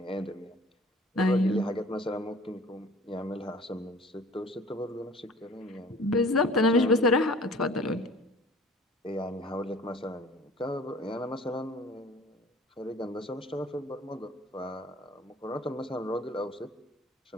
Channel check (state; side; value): normal; both; correlation 0.47